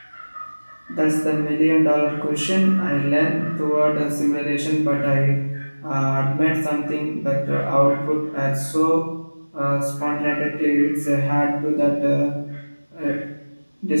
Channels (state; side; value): inverted; both; correlation -1.00